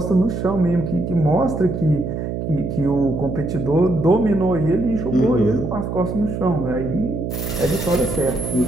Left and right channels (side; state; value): right; noise; hum, 4 dB below the sound